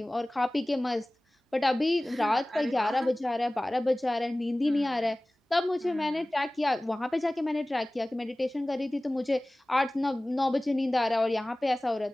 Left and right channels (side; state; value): both; normal; correlation 0.98